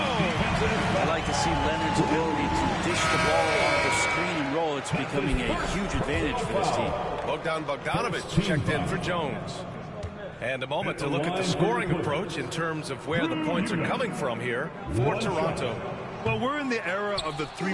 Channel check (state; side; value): identical; both; correlation 1.00